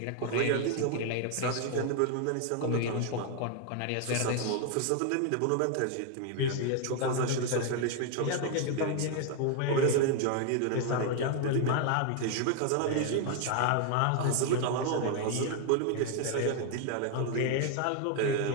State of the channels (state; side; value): different; both; correlation 0.00